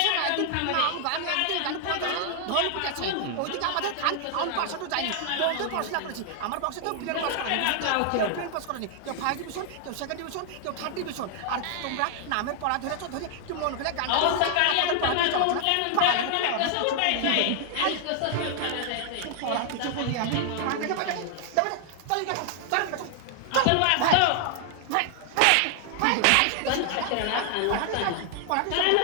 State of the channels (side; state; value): both; different; correlation 0.00